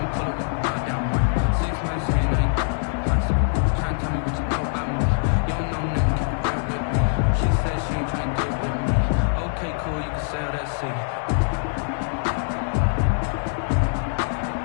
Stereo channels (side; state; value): right; silent; 63 dB below the other